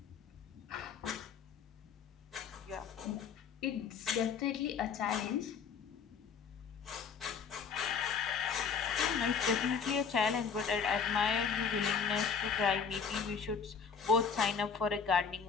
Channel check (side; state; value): right; quieter; 6.2 dB